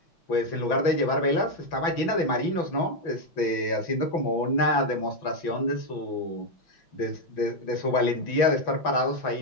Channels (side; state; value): right; late; 6.0 ms